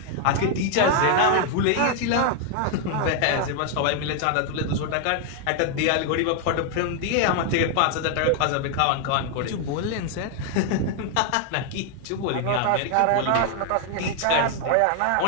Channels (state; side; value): different; both; correlation 0.00